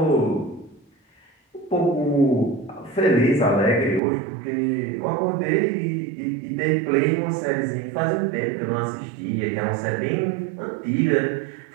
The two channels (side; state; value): left; drops out; at 4.0 s